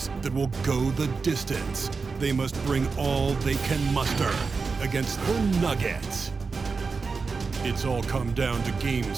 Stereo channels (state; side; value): quieter; left; 4.7 dB